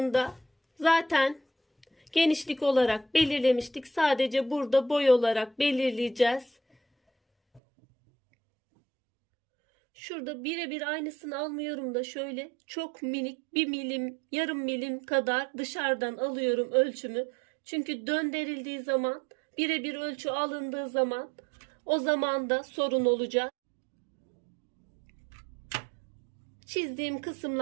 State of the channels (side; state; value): left; drops out; at 7.6 s